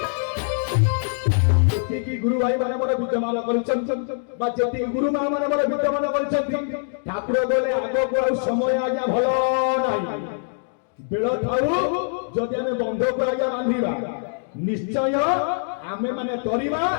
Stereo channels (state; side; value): silent; right; digital silence